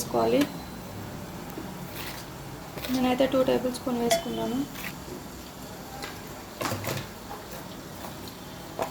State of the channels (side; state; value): both; identical; correlation 1.00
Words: నేనైతే 2 టేబుల్ స్పూన్ వేసుకున్నాను.